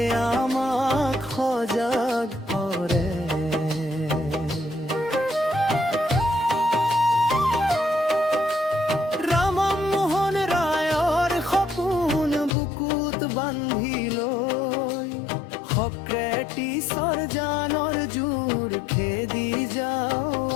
আমাক সজাগ কৰে ৰামমোহন ৰায়ৰ সপোন বুকুত বান্ধি লৈ সক্ৰেটিছৰ জানৰ জোৰ খেদি যাওঁ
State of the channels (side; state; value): right; drops out; at 12.6 s